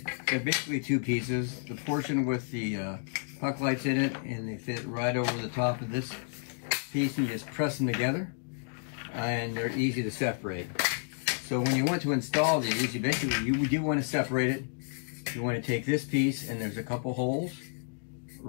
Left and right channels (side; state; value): right; silent; 57 dB below the other